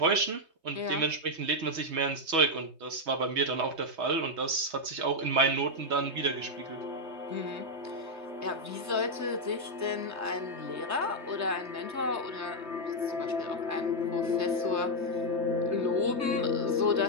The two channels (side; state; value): left; late; 3.2 ms